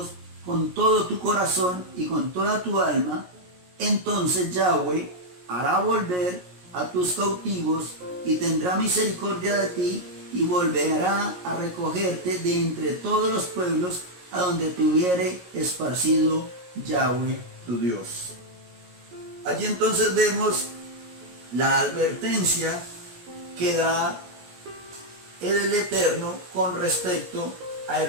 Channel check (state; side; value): late; left; 17 ms